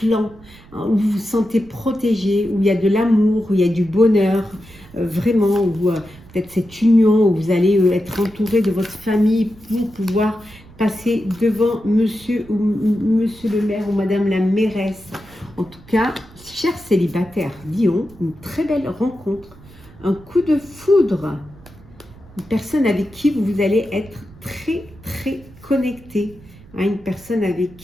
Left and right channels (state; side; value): noise; right; rumble, 23 dB below the sound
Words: hein, où vous vous sentez protégé, où il y a de l'amour, où il y a du bonheur, vraiment, où peut-être cette union, où vous allez être entouré de votre famille pour pouvoir passer devant monsieur le maire ou madame la mairesse. En tout cas, chers célibataires, Lion, une très belle rencontre, un coup de foudre, une personne avec qui vous allez être très, très connecté, hein, une personne avec